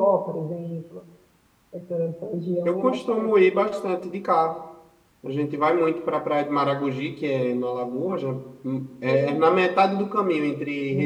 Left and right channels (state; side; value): identical; both; correlation 1.00